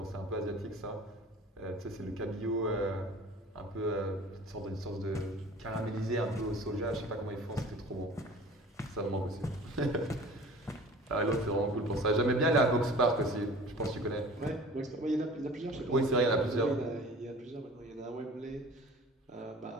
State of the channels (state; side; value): normal; both; correlation 0.44